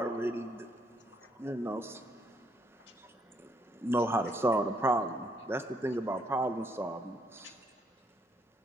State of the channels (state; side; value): normal; both; correlation 0.71